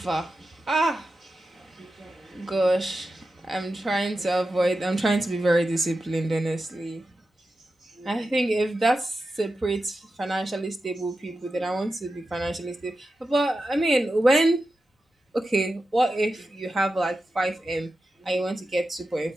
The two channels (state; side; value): normal; both; correlation 0.92